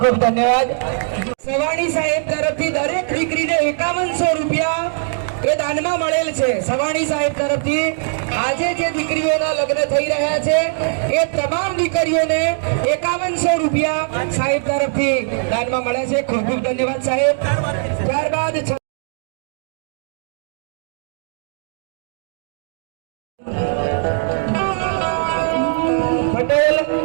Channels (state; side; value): silent; left; digital silence